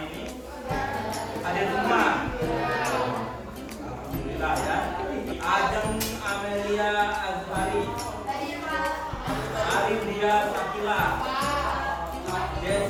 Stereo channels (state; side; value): identical; both; correlation 1.00